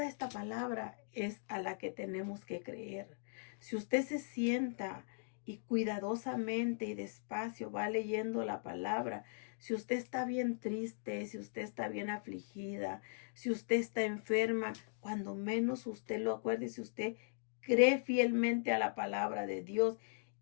esta palabra es a la que tenemos que creer. Si usted se sienta y cuidadosamente y despacio va leyendo la palabra, si usted está bien triste, si usted está bien afligida, si usted está enferma, cuando menos usted lo acuerde, si usted cree fielmente a la palabra de Dios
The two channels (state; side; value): silent; right; digital silence